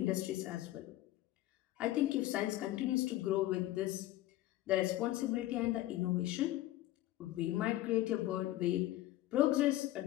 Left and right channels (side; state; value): right; quieter; 15.7 dB